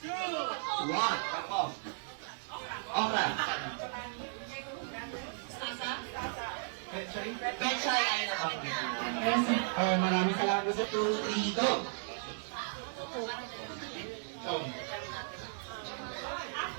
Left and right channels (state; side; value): silent; left; digital silence